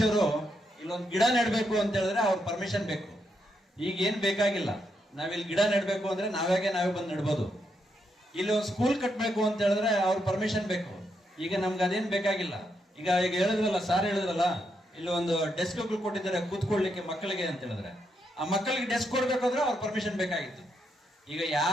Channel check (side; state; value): both; normal; correlation 0.80